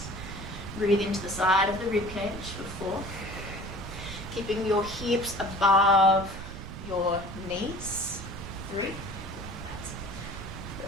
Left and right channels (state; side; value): noise; right; rumble, 10 dB below the sound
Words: Breathe into the side of the rib cage for 4. Keeping your hips above your knees. 3. That's